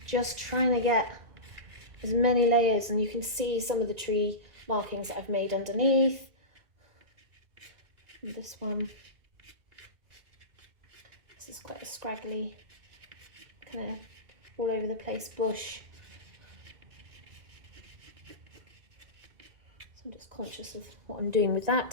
just trying to get as many layers, and you can see some of the tree markings that I've made underneath. And this one, this is quite a scraggly, kind of all over the place bush. So I'm just conscious of what I'm doing with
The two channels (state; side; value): late; left; 1.9 ms